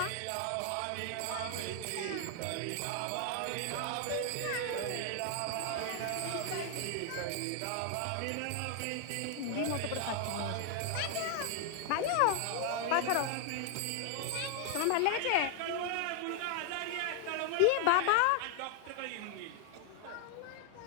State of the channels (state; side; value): different; both; correlation 0.00